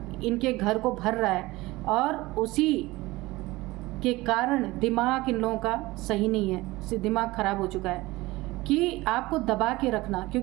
इनके घर को भर रहा है, और उसी के कारण दिमाग इन लोगों का सही नहीं है, दिमाग ख़राब हो चुका है। कि आपको दबा के रखना,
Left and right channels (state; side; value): quieter; left; 19.9 dB